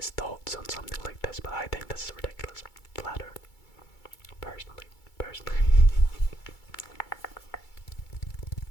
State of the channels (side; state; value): right; late; 2.3 ms